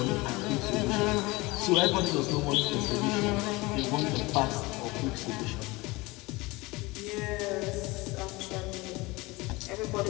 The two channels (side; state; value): right; quieter; 22.9 dB